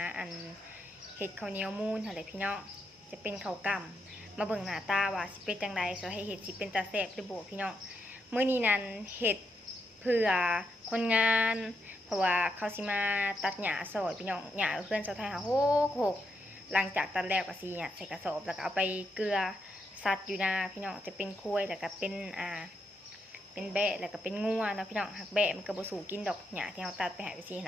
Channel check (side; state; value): both; normal; correlation 0.81